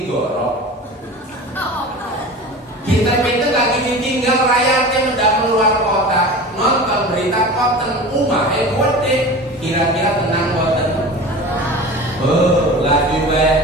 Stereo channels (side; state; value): both; normal; correlation 0.34